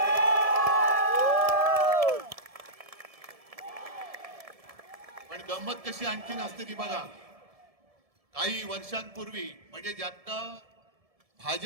पण गंमत कशी आणखीन असते ती बघा. काही वर्षांपूर्वी म्हणजे ज्यातनं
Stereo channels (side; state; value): left; late; 1.7 ms